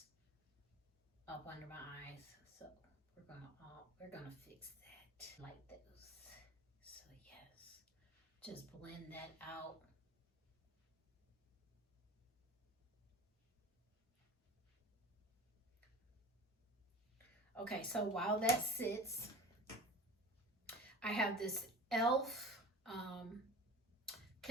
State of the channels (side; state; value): both; normal; correlation 0.37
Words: up under my eyes. So we're gonna fix that like those. So yes, just blend that out. Okay, so while that sits, I have this e.l.f.